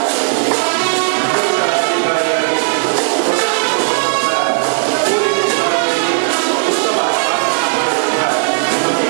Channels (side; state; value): left; silent; digital silence